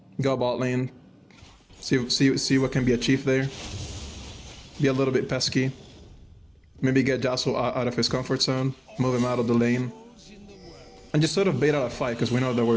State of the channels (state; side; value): identical; both; correlation 1.00